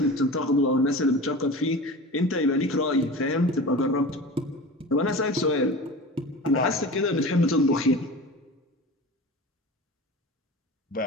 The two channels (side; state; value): both; normal; correlation 0.33